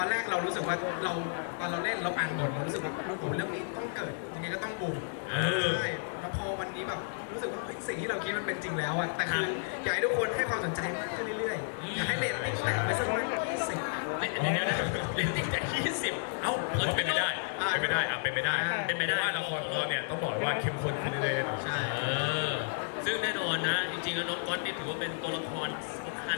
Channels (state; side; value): silent; right; digital silence